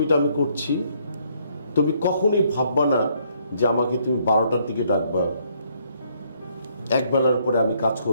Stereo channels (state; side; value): inverted; both; correlation -0.68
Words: আমি করছি, তুমি কখনোই ভাববা না যে আমাকে তুমি 12টার দিকে ডাকবা, একবেলার পরে আমি কাজ